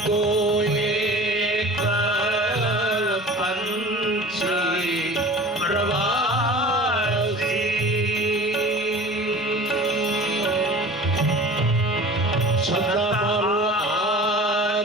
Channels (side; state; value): both; normal; correlation 0.40